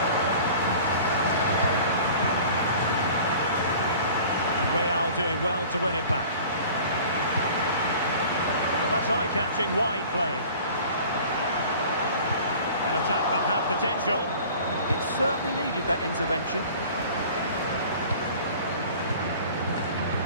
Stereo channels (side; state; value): both; inverted; correlation -0.45